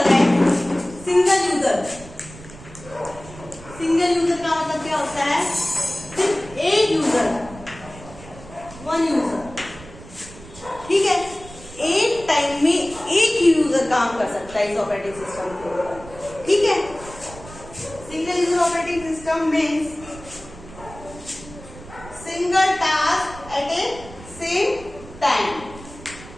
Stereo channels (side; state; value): right; noise; rumble, 17 dB below the sound